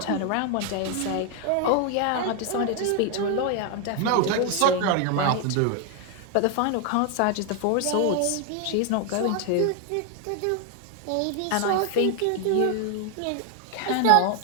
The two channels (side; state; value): both; different; correlation 0.00